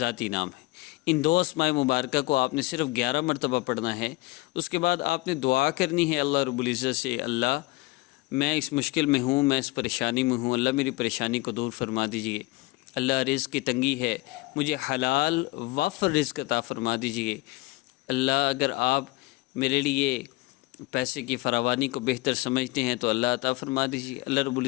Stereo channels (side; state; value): right; quieter; 22.0 dB